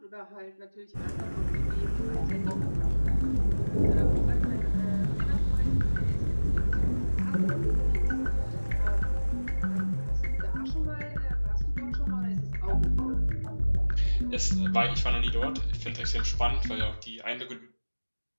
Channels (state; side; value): inverted; both; correlation -1.00